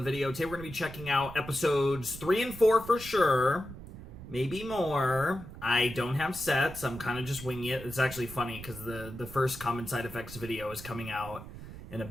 video. Today we're going to be checking out episodes 3 and 4 for sure. Maybe more. I don't have sets. I'm kind of just winging it. It's actually funny because the first Common Side Effects video is coming out in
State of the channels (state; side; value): noise; right; rumble, 13 dB below the sound